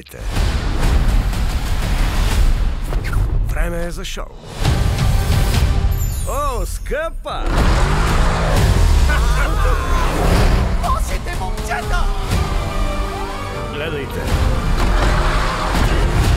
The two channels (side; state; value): both; identical; correlation 1.00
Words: Време е за шоу. О, скъпа! Лошите момчета! Гледайте.